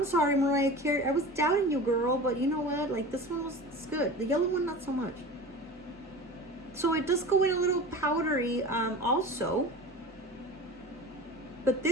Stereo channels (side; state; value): both; normal; correlation 0.34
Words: sorry, Mariah Carey. I was doubting you, girl, but you know what? Like, this one was good. The yellow one, not so much. So it does go in a little powdery also. But